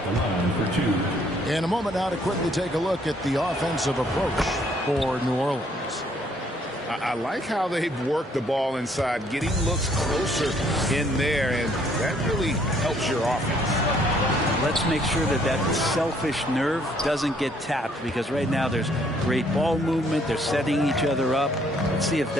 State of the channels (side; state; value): both; normal; correlation 0.65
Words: For 2. In a moment now to quickly take a look at the offensive approach for New Orleans. I like how they've worked the ball inside, getting looks closer in there, and that really helps your offense. Let's make sure that that selfish nerve doesn't get tapped, because right now there's great ball movement. They're setting each other up. Let's see if